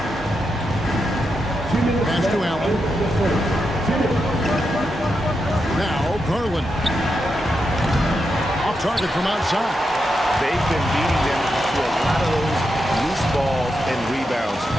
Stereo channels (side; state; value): both; normal; correlation 0.86